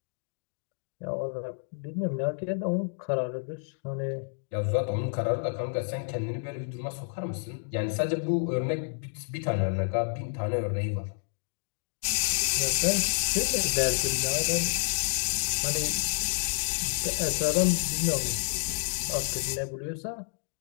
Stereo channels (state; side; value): silent; right; digital silence